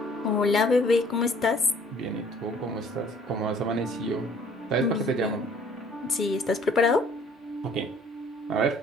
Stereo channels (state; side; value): normal; both; correlation 0.56